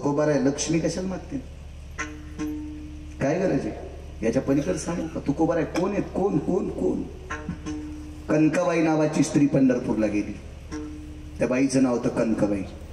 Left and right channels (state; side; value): identical; both; correlation 1.00